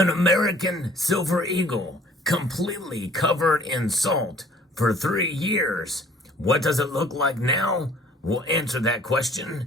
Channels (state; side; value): normal; both; correlation 0.55